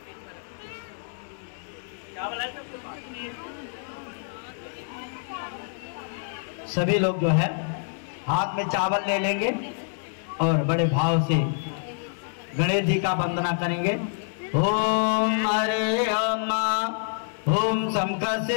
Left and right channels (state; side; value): silent; right; 60 dB below the other